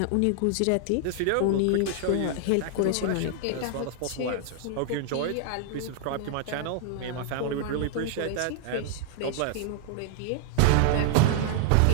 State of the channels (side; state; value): both; different; correlation 0.00